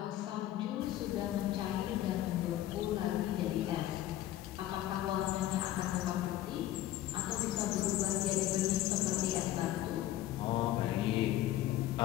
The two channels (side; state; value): right; quieter; 13.8 dB